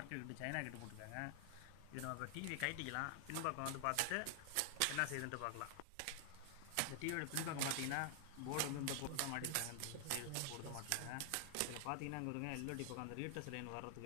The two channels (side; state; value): both; different; correlation 0.00